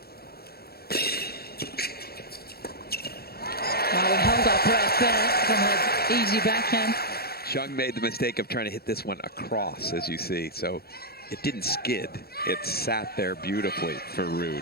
Well, we held our breath there from an easy backhand. Shang made the mistake of trying to hit this one across, as you see, so it didn't skid. It sat there beautifully for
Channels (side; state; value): right; late; 0.45 ms